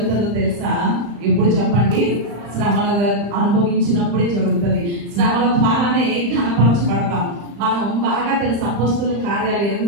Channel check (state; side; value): late; left; 35 ms